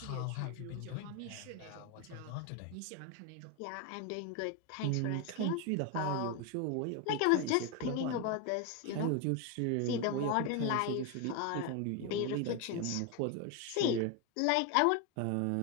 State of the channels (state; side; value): different; both; correlation 0.02